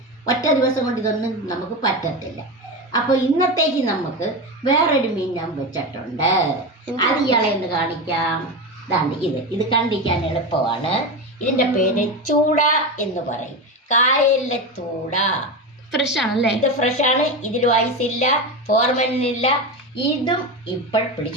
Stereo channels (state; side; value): normal; both; correlation 0.19